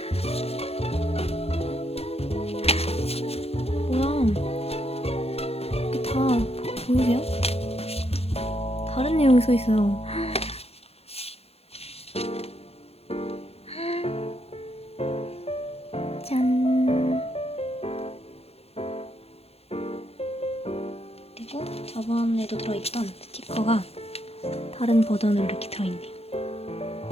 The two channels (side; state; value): right; late; 0.29 ms